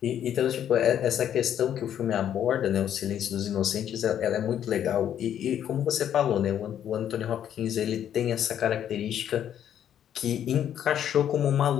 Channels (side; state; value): right; quieter; 10.0 dB